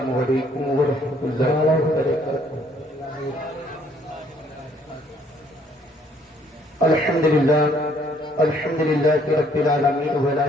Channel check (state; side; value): normal; both; correlation 0.64